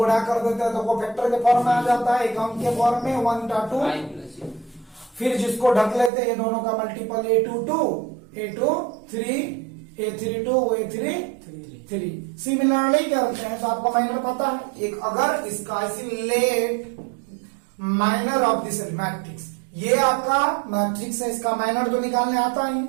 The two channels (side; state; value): left; drops out; at 6.1 s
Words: कर देते हैं तो कोफैक्टर के फॉर्म में आ जाता है, एक अंक के फॉर्म में 1/2। फिर जिसको ढक लेते हैं ये दोनों का multiple A22, A23, A32, A33। Similarly करते हैं तो आपको माइनर पता है। एक अगर इसका let minor of this matrix, ये आपका मैट्रिक्स है, इसका माइनर तो निकालने आता है